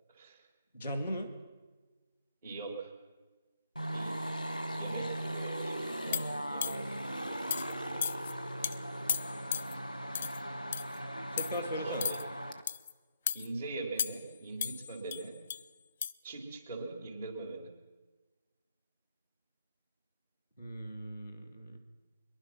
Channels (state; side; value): inverted; both; correlation -0.78